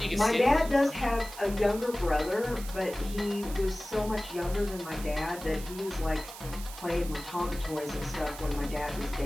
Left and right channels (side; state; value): right; noise; hiss, 13 dB below the sound